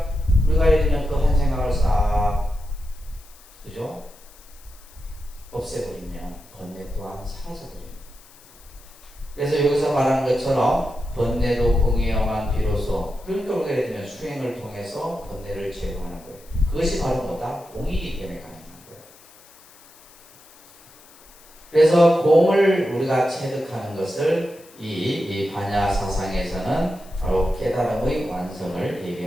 우리가 예를 들면 그 한 생각을 싹 그죠? 없애버리면 번뇌 또한 사라져버립니다. 그래서 여기서 말하는 것처럼 번뇌도 공이어만 비로소 그러니까 우리가 예를 들면 수행을 통해서 번뇌를 제거하는 거예요. 그것이 바로 뭐다? 공이기 때문에 가능한 거예요. 그래서 공을 우리가 체득하는 것을 이 반야 사상에서는 바로 깨달음의 완성을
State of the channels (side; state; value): left; noise; hiss, 24 dB below the sound